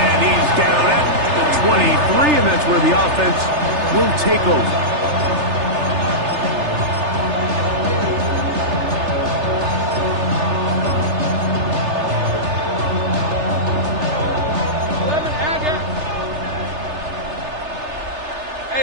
he's down at the 23, and that's where the offense will take over.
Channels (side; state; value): left; late; 3.3 ms